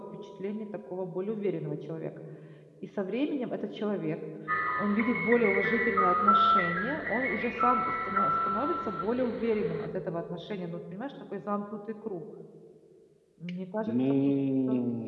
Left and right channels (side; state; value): both; identical; correlation 1.00